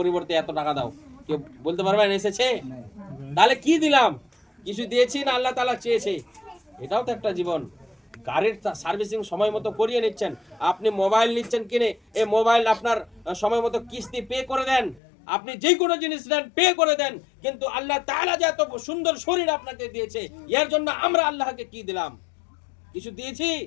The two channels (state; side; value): drops out; right; at 15.0 s